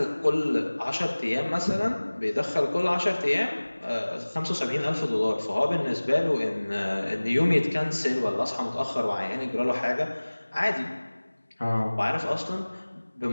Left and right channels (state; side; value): inverted; both; correlation -1.00